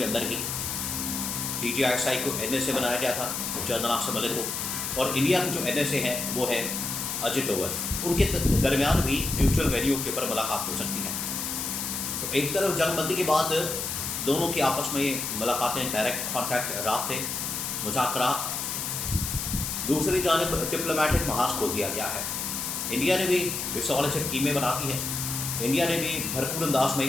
اندر ہی ڈی جی ایس آئی کو این ایس اے بنایا گیا تھا، جناب سے ملک کو، اور انڈیا کے جو این ایس اے ہیں وہ ہے اجے ڈوول، ان کے درمیان بھی میوچل ویلیو کے اوپر ملاقات ہو سکتی ہے۔ تو ایک طرف جنگ بندی کے بعد دونوں کی آپس میں ملاقاتیں، ڈائریکٹ کانٹیکٹ، رابطے، مذاکرات، دوسری جانب ڈپلومیٹک محاذ کھول دیا گیا ہے۔ انڈیا نے بھی رسالت سے ٹیمیں بناتی ہے، انڈیا نے بھی بھرپور انداز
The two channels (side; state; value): left; noise; hiss, 3 dB below the sound